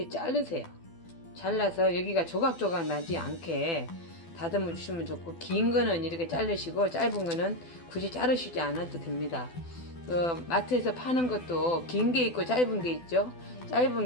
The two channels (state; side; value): late; right; 12 ms